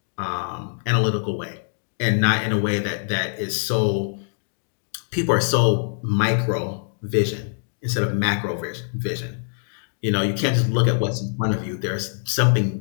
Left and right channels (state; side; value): silent; right; digital silence